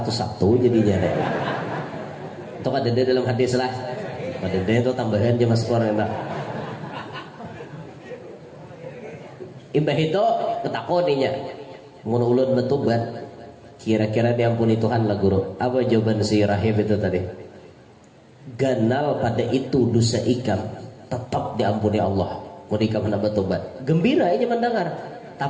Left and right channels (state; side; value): identical; both; correlation 1.00